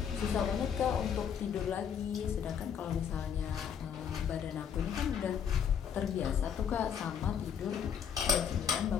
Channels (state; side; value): quieter; right; 7.9 dB